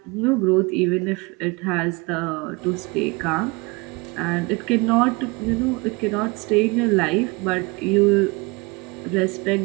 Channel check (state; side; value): quieter; left; 26.6 dB